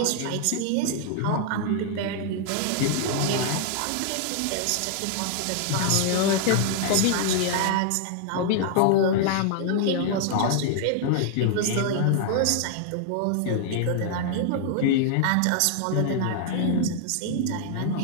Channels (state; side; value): different; both; correlation -0.01